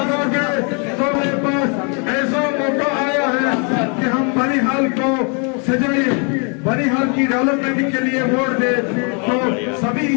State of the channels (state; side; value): quieter; right; 36.8 dB